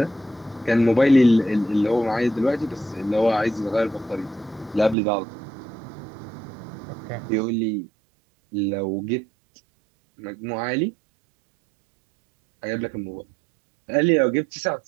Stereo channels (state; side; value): drops out; left; at 5.0 s